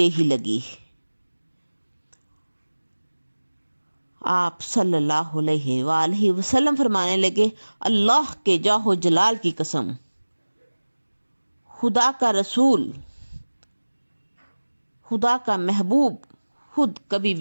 ہی لگی۔ آپ صلی اللہ علیہ وآلہ وسلم فرمانے لگے، اللہ کے جاہ و جلال کی قسم، خدا کا رسول، خدا کا محبوب خود کبھی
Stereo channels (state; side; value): inverted; both; correlation -1.00